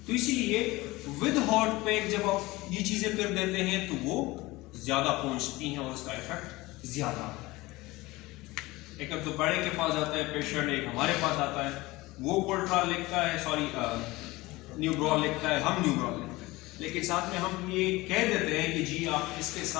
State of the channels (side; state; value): right; quieter; 20.6 dB